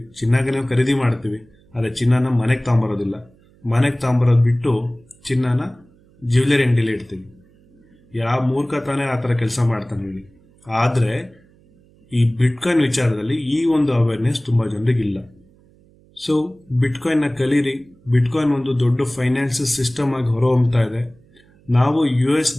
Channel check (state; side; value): noise; right; hum, 30 dB below the sound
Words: ಚಿನ್ನಗೆ ನಾವು ಖರೀದಿ ಮಾಡ್ತೀವಿ, ಆದರೆ ಚಿನ್ನನ ಮನೆಗೆ ತಗೊಂಬರೋದಿಲ್ಲ. ಮನೆಗೆ ತಗೊಂಬರೋದು ಬಿಟ್ಟು ಚಿನ್ನನ ಜ್ಯುವೆಲರಿ ಅಂಗಡಿಲಿ ಇಡ್ತೀವಿ. ಯಾವ ಮೂರ್ಖ ತಾನೇ ಆ ಥರ ಕೆಲಸ ಮಾಡ್ತಾನೆ ಹೇಳಿ. ಆದರೆ ಈ ಬಿಟ್ಕಾಯಿನ್ ವಿಚಾರದಲ್ಲಿ ಈ ಒಂದು ಅವೇರ್ನೆಸ್ ತುಂಬ ಜನರಿಗಿಲ್ಲ. ಸೊ ಬಿಟ್ಕಾಯಿನ್ನ ಕಲೀರಿ. ಬಿಟ್ಕಾಯಿನ್ ಒಂದು ದೊಡ್ಡ ಫೈನಾನ್ಷಿಯಲ್ ಸಿಸ್ಟಮ್ ಆಗಿ ಹೊರಹೊಮ್ತಾ ಇದೆ. ನಾವು US